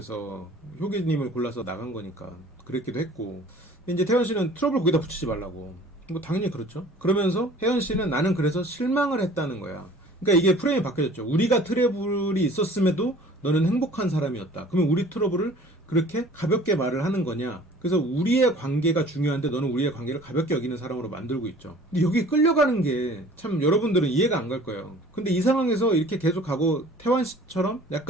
효기님을 골라서 나간 거니까 그랬기도 했고. 이제 태연 씨는 트러블 거기다 붙이지 말라고. 뭐 당연히 그렇죠. 그러면서 혜연 씨는 나는 그래서 실망을 했다는 거야. 그러니까 이게 프레임이 바뀌어졌죠. 우리가 트러블이 있었음에도 너는 행복한 사람이었다. 그러면 우리 트러블을 그렇게 가볍게 말을 하는 거냐? 그래서 우리의 관계가 중요한데 너는 우리의 관계를 가볍게 여기는 사람으로 만들고 있죠. 근데 여기 끌려가는 게 참 여러분들은 이해가 안 갈 거예요. 근데 이 상황에서 이렇게 계속 가고 태환 씨처럼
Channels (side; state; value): both; normal; correlation 0.49